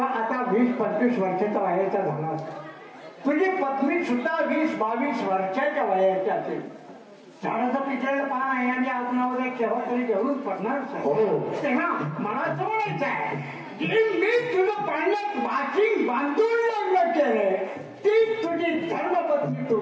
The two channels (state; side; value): identical; both; correlation 1.00